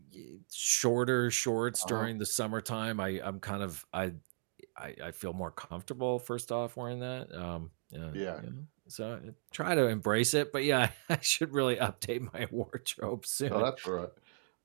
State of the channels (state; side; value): silent; left; digital silence